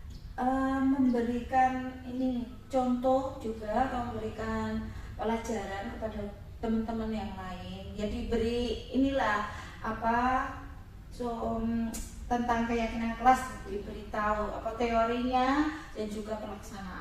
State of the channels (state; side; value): identical; both; correlation 1.00